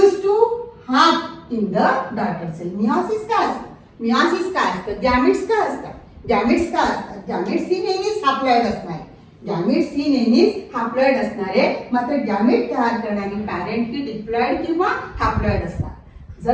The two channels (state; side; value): identical; both; correlation 1.00